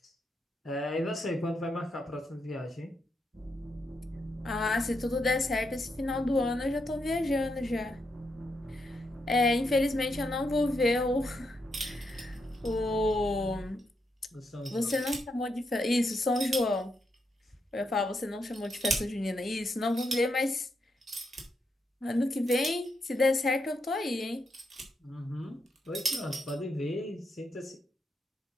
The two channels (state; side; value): normal; both; correlation 0.82